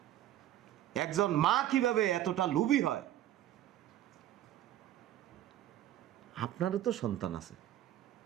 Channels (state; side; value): quieter; left; 12.6 dB